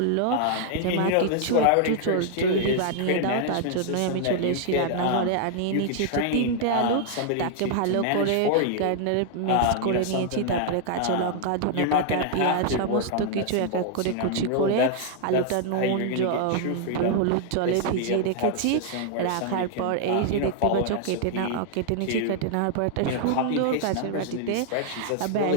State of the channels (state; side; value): different; both; correlation -0.01